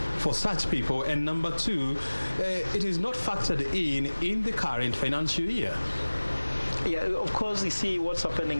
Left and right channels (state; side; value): inverted; both; correlation -1.00